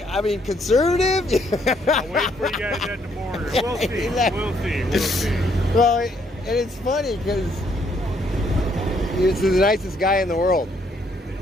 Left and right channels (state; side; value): normal; both; correlation 0.69